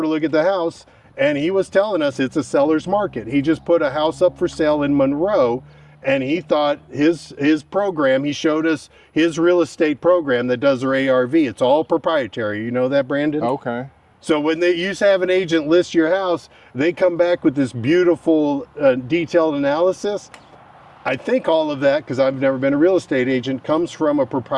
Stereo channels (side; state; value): both; identical; correlation 1.00